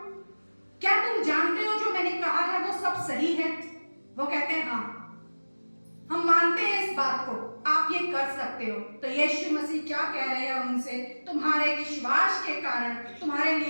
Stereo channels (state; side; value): inverted; both; correlation -1.00